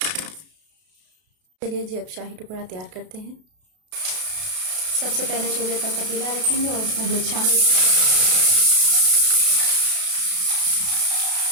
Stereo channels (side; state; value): left; late; 32 ms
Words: चलिए जी, अब शाही टुकड़ा तैयार करते हैं। सबसे पहले चूल्हे पर पतीला रखेंगे और उसमें दूध शामिल